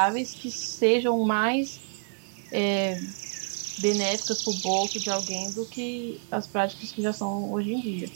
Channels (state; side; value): silent; left; 59 dB below the other